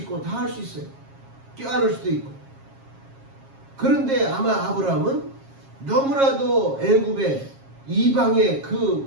다 할 수 있어요. 껴안을 수도 있고. 그런데 아마 아브라함은 너무나도 애굽의 이방의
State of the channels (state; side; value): late; left; 7.4 ms